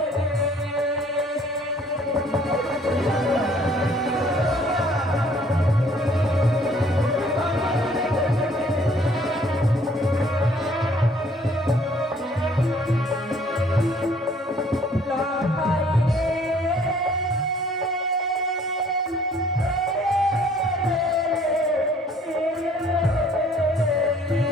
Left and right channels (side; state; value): both; normal; correlation 0.59